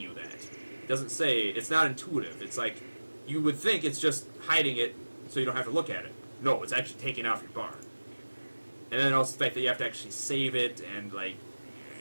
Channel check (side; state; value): both; inverted; correlation -1.00